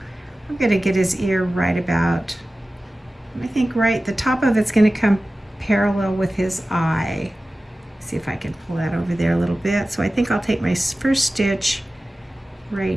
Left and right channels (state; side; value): normal; both; correlation 0.96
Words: going to get his ear right about, I think right, the top of it's going to come parallel with his eye. See if I can pull that over there a little bit. So I think I'll take my first stitch